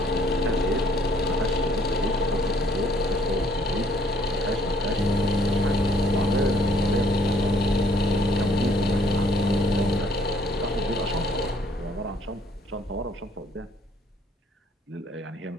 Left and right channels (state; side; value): normal; both; correlation 0.64